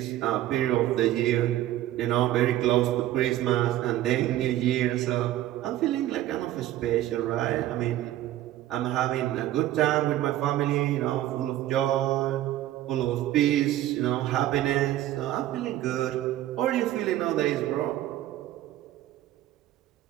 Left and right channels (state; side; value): quieter; left; 13.8 dB